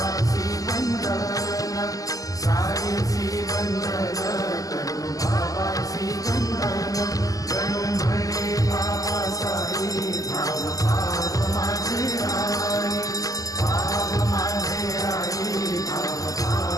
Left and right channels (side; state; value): right; late; 0.17 ms